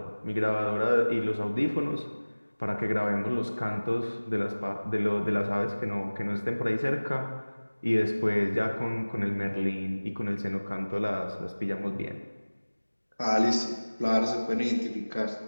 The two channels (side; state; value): both; inverted; correlation -1.00